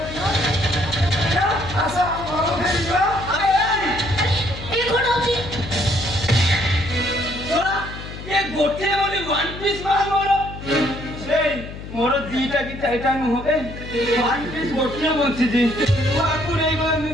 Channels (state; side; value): noise; left; hum, 11 dB below the sound